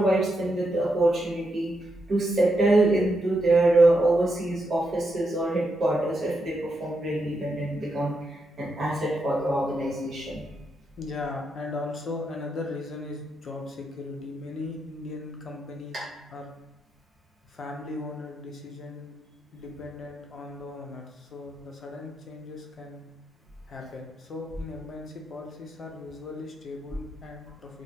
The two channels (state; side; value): normal; both; correlation 0.83